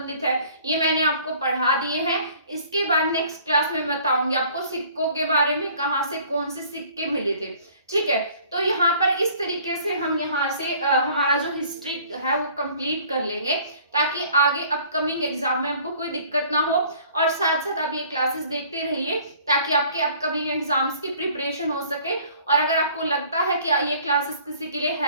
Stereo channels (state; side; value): inverted; both; correlation -0.54